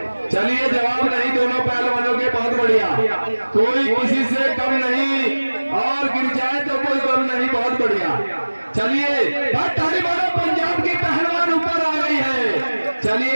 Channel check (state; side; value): inverted; both; correlation -1.00